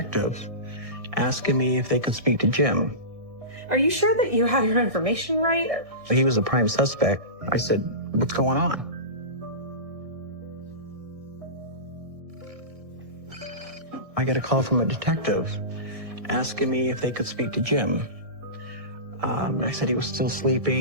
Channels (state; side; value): late; left; 1.6 ms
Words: asking me if they could speak to Jim. Are you sure that you have your information right? He was a prime suspect. I said, what's going on? I get a call from a detective asking me if they could speak to Jim. I said he was still